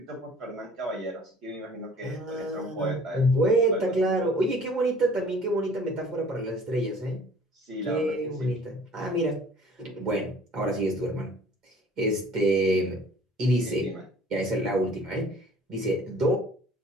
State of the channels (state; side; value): normal; both; correlation 0.51